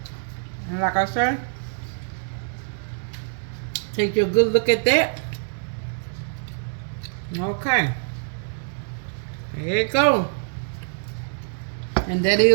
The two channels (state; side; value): silent; left; digital silence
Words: like I said, take your good look at that. Okay. There you go. And that